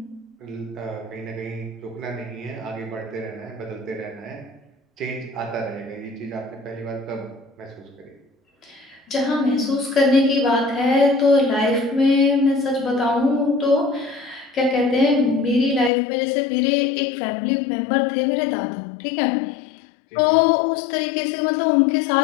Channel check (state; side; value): drops out; right; at 15.9 s